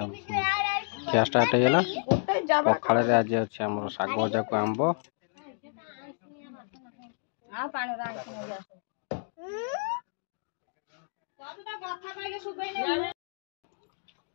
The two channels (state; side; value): silent; right; digital silence